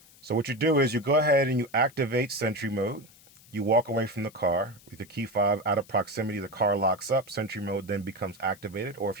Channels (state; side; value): noise; left; hiss, 25 dB below the sound